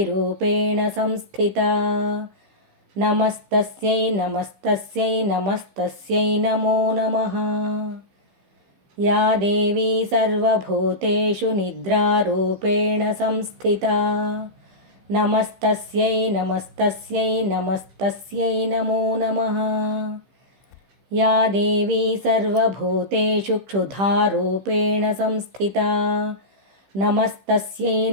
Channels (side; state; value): left; late; 15 ms